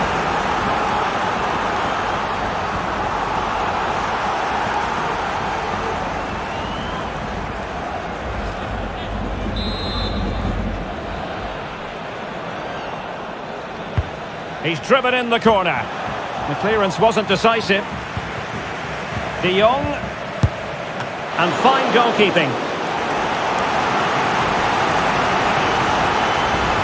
He's driven in the corner. The clearance wasn't decisive. De Jong. And fine goalkeeping.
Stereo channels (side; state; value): both; identical; correlation 1.00